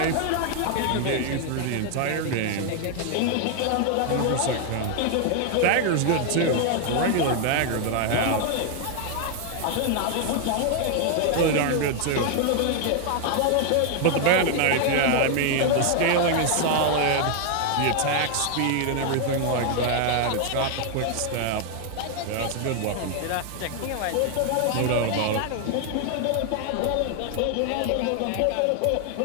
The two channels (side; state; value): both; different; correlation 0.00